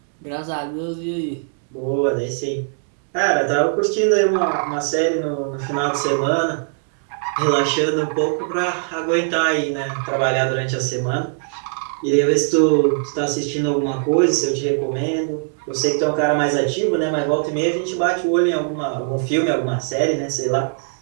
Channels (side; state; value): left; silent; 64 dB below the other